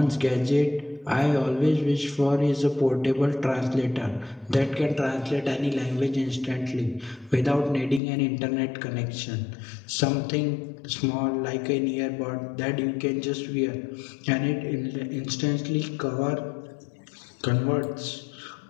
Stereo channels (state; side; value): drops out; right; at 8.0 s